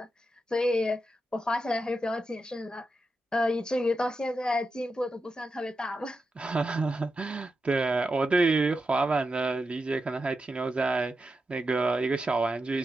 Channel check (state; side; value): normal; both; correlation 0.88